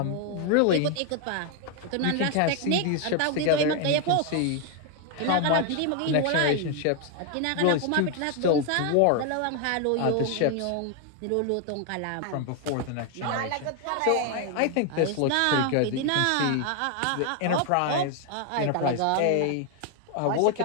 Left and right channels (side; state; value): both; different; correlation 0.01